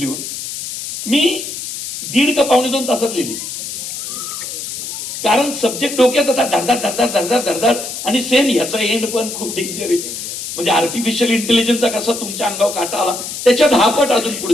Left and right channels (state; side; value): noise; left; hiss, 7 dB below the sound